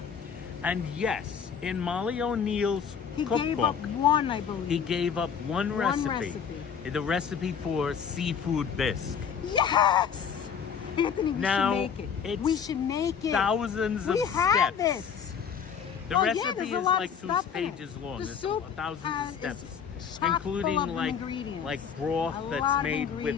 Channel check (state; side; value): quieter; right; 7.1 dB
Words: And yes, in Molly O'Neill's He gave up cookbook, one, I believe. he gave up one recipe. recipe. The recipe for seafood bisque. Yes! Anthony, we Now, should make it. it's We should make it. Thousands of we have steps. it. The Oh, yeah, recipe there's a is lot like of 2 stuff in it. pages long. The There's soup thousands of is steps, chock including full of like ingredients. broth A lot that's of made with